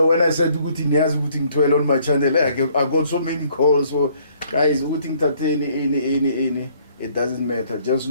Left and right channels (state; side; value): inverted; both; correlation -0.63